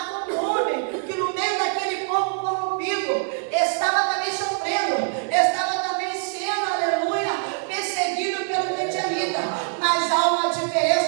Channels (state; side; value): silent; left; 62 dB below the other